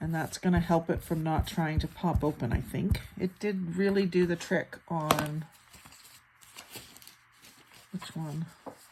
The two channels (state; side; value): identical; both; correlation 1.00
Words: And that's going to help it from not trying to pop open, I think. It did really do the trick on, which one?